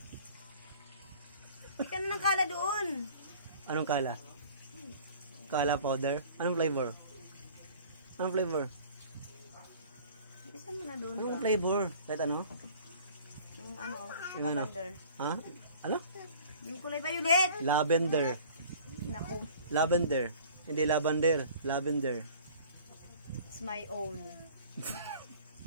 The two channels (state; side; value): inverted; both; correlation -0.48